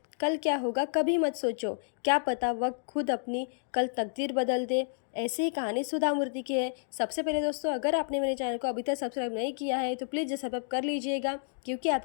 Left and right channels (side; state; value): right; silent; digital silence